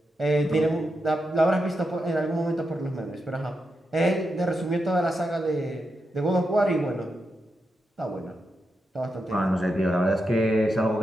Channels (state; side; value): normal; both; correlation 0.86